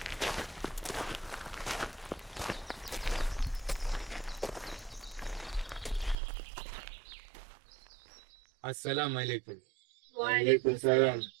Assalamu alaikum. Wa alaikum salam.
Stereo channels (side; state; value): left; drops out; at 6.2 s